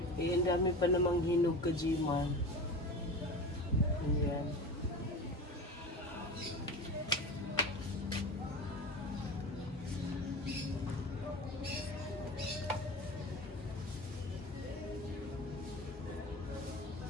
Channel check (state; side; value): normal; both; correlation 0.30